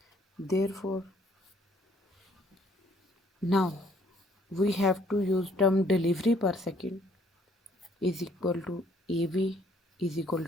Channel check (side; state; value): both; normal; correlation 0.63